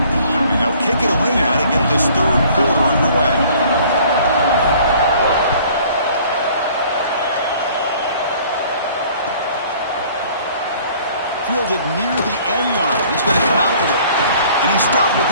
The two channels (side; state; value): both; inverted; correlation -0.54